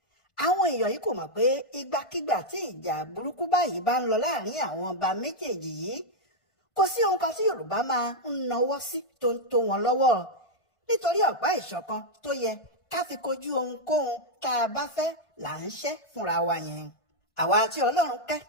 Àwọn èèyàn yìí kò mọ̀ pé ìgbàkigbà tí ìjà burúkú báyìí bá ń lọ láàrin àwọn ọba méjèèjì yìí, kò sí ohun kan tí Yorùbá máa ń nawọ́ sí tó ń tó wọn lọ́wọ́, nítorí ọ̀pá ìṣọ̀kan tó yẹ ká fi kojú ohunkóhun tá a bá fẹ́ là ń ṣẹ́ fúnra wa yẹn. Àwa tí Ọlọ́run kẹ́,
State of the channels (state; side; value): late; right; 1.5 ms